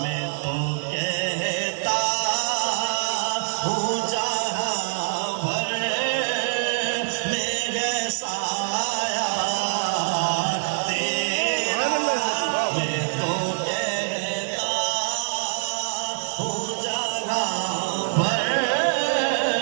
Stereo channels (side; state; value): left; silent; digital silence